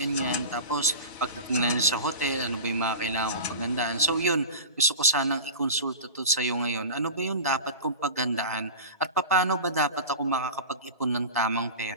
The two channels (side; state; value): both; inverted; correlation -0.32